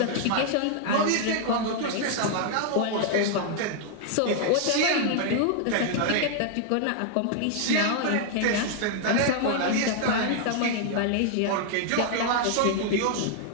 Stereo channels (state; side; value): different; both; correlation 0.00